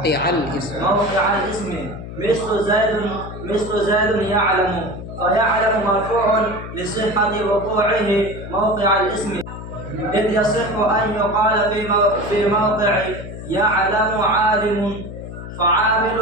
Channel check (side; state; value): left; noise; hum, 10 dB below the sound